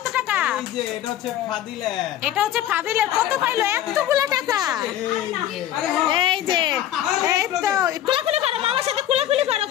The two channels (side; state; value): right; quieter; 12.0 dB